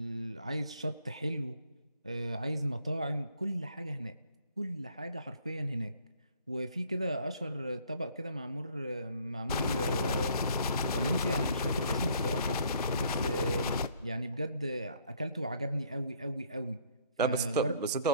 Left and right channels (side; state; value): both; inverted; correlation -0.61